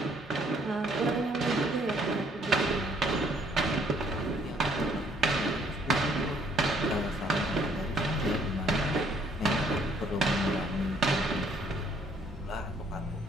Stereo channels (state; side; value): normal; both; correlation 0.65